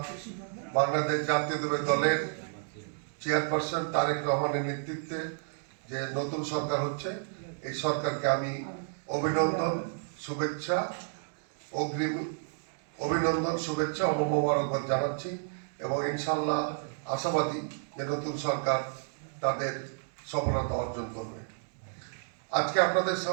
বাংলাদেশ জাতীয়তাবাদী দলের চেয়ারপারসন তারেক রহমানের নেতৃত্বে যে নতুন সরকার হচ্ছে, এই সরকারকে আমি অভিনন্দন, শুভেচ্ছা, অগ্রিম অভিনন্দন, শুভেচ্ছা ও মোবারকবাদ জানাচ্ছি এবং ইনশাল্লাহ আশাবাদী যে নতুন সরকার তাদের সফলতা অর্জন করবে। আজকে আপনাদের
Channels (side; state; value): left; silent; digital silence